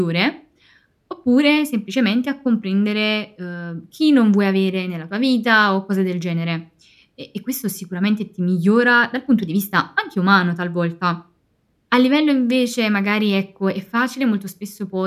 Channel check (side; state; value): both; identical; correlation 1.00